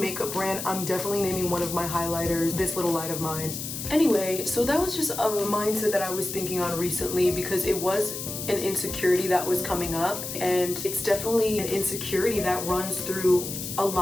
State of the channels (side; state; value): left; noise; hiss, 6 dB below the sound